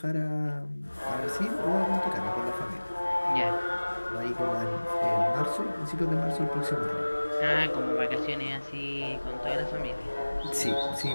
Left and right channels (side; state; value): both; inverted; correlation -1.00